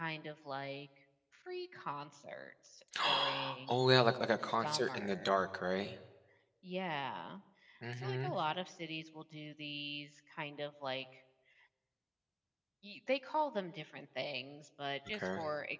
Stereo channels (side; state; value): both; identical; correlation 1.00